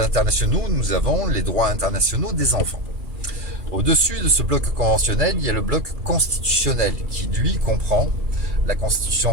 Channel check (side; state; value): left; late; 2.4 ms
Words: internationaux, nous avons les droits internationaux des enfants. Au-dessus de ce bloc conventionnel, il y a le bloc constitutionnel, qui lui comprend la